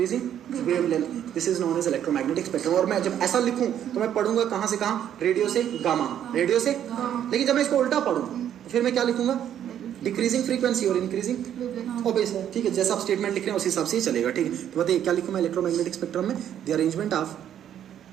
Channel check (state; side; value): quieter; left; 10.2 dB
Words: wavelength, this is known as electromagnetic spectrum। और मैं जब ऐसा लिखूं तो मैं पढ़ूंगा कहां से कहां, रेडियो से गामा, रेडियो से, लेकिन जब मैं इसको उल्टा पढ़ूं फिर मैं क्या लिखूंगा, डिक्रीजिंग फ्रीक्वेंसी और इंक्रीजिंग ओबेस है। ठीक है, जैसा आप स्टेटमेंट लिख रहे हैं उस हिसाब से ही चलेगा। ठीक है, तो बताइए क्या लिखूं मैं इलेक्ट्रोमैग्नेटिक स्पेक्ट्रम में, द